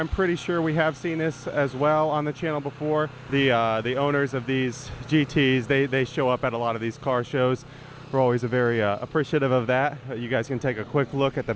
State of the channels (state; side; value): identical; both; correlation 1.00